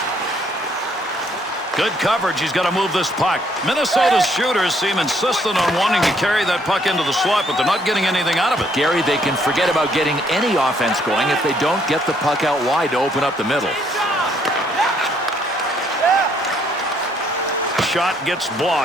Good coverage. He's got to move this puck. Minnesota's shooters seem insistent on wanting to carry that puck into the slot, but they're not getting anything out of it. Gary, they can forget about getting any offense going if they don't get the puck out wide to open up the middle. Shot gets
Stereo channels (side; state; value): both; normal; correlation 0.68